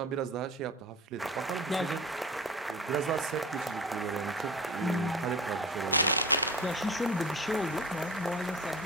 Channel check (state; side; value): normal; both; correlation 0.34